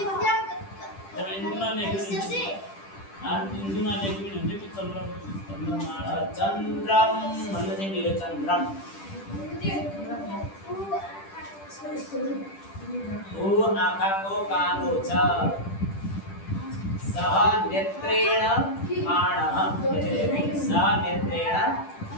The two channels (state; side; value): late; right; 10 ms